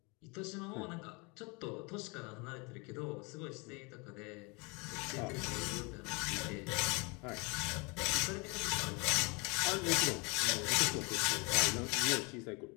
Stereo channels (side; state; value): right; quieter; 29.2 dB